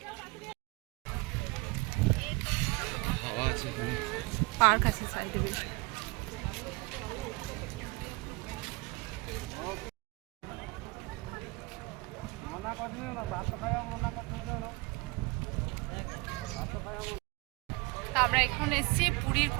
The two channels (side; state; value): left; quieter; 25.2 dB